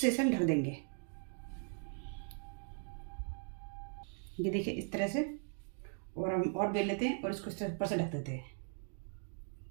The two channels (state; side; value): silent; left; 52 dB below the other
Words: हम ढक देंगे। ये देखिए इस तरह से। और हम और बेल लेते हैं और इसको इस तरह ऊपर से ढक देते हैं।